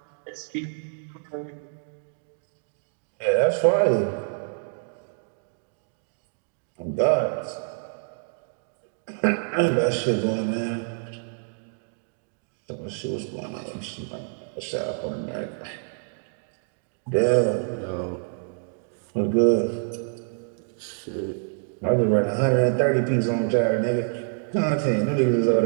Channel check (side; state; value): left; silent; digital silence